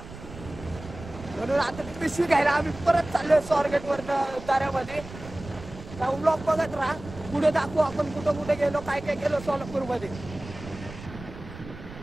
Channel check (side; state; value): right; noise; rumble, 14 dB below the sound